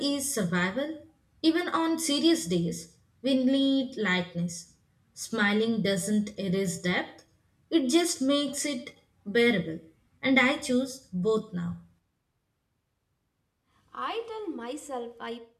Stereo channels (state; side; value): identical; both; correlation 1.00